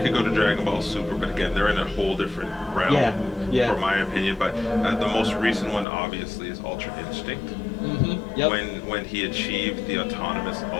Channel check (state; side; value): drops out; right; at 5.9 s